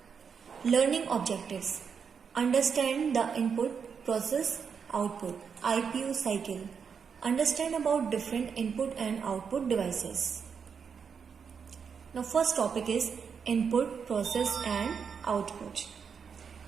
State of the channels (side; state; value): left; quieter; 6.4 dB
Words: Learning objectives. Understand the input, process, output, IPU cycle. Understand about different input and output devices. Now first topic is input, process and output.